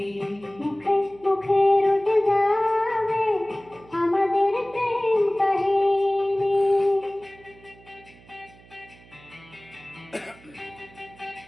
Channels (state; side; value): noise; right; hum, 24 dB below the sound